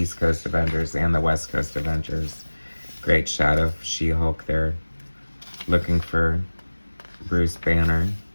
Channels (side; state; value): both; inverted; correlation -1.00